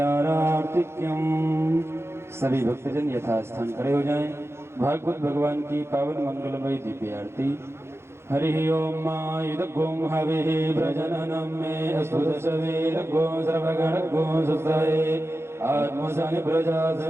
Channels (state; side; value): late; left; 0.12 ms